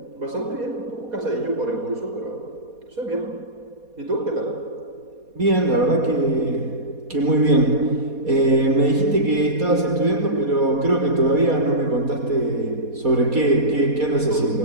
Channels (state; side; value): late; left; 4.2 ms